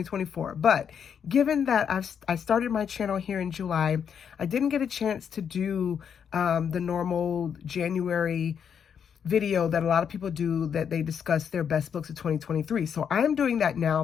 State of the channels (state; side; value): quieter; right; 7.6 dB